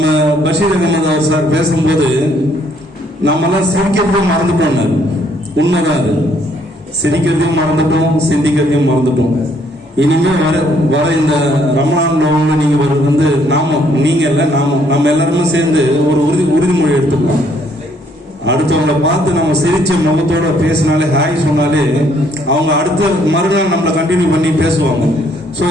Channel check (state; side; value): normal; both; correlation 0.67